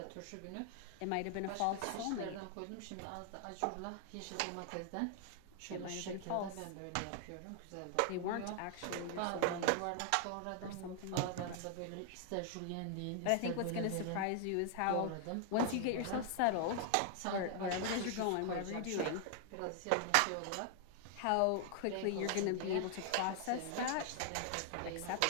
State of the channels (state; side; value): different; both; correlation 0.00